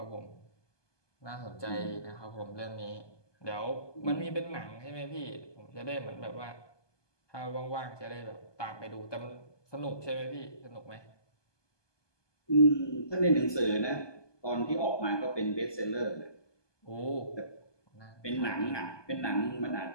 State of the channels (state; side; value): late; right; 1.2 ms